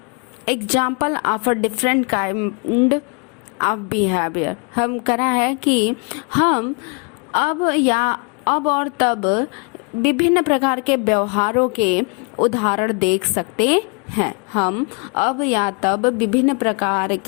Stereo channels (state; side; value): quieter; right; 35.0 dB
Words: example of a different kind of behaviour. हम कह रहा है कि हम अब और तब विभिन्न प्रकार के व्यवहारों के उदाहरण देख सकते हैं। हम अब या तब विभिन्न प्रकार